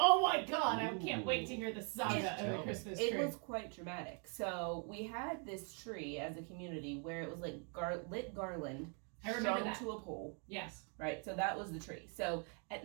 my god! I can't wait to hear the saga It's- of the Christmas tree. It was quite dramatic. So we had this tree as a community where it was like lit garland I remember strung that. to a pole, Yes. right? So that was the tree. So at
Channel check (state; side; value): quieter; left; 39.1 dB